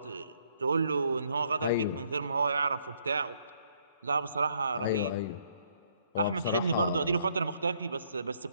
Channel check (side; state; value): both; inverted; correlation -0.69